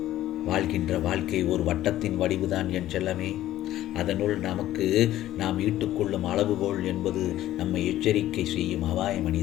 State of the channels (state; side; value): quieter; right; 13.8 dB